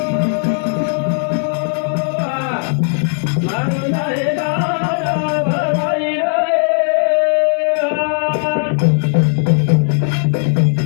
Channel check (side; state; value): right; silent; digital silence